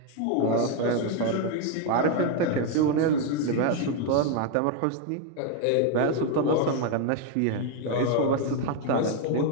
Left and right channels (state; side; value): different; both; correlation 0.01